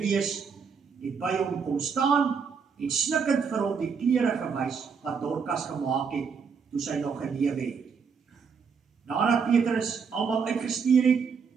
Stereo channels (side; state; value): left; quieter; 6.0 dB